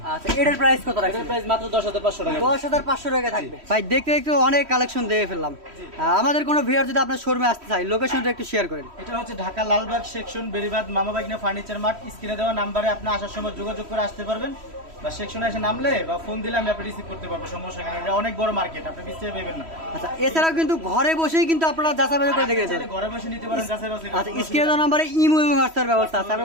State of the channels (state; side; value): late; left; 3.1 ms